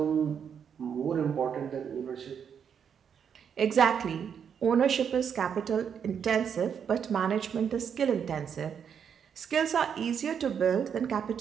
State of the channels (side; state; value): left; quieter; 7.6 dB